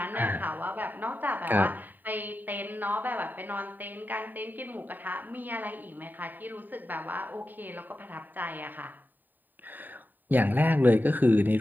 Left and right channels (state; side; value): late; left; 0.089 ms